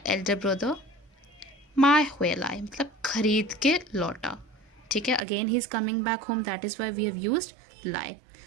elder brother mai hui lai. मतलब खरीद के लौटा. ठीक है. Again, he is coming back home. That is why we have used lai.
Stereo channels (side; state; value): left; drops out; at 5.2 s